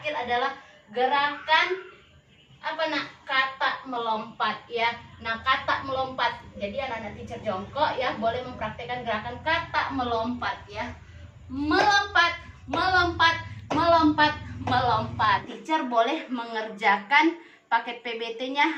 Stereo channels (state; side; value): identical; both; correlation 1.00